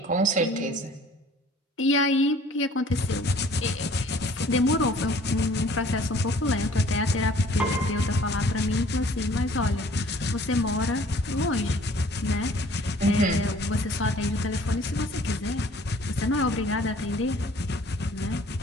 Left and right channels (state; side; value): normal; both; correlation 0.54